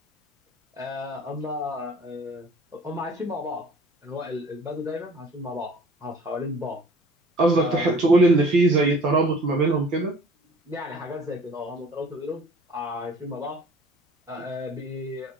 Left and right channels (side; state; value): both; normal; correlation 0.50